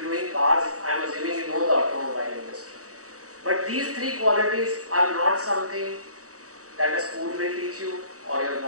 are doing cars, I am assuming you know the automobile industry. But these 3 qualities are not something that a school will teach you, or your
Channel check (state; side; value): late; left; 0.66 ms